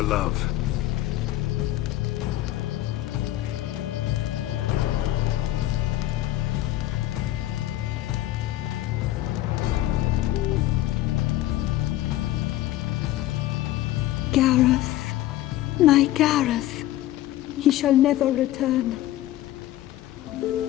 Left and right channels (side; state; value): right; quieter; 14.7 dB